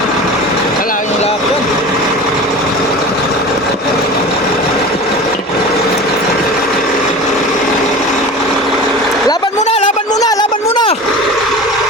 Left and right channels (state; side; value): normal; both; correlation 0.34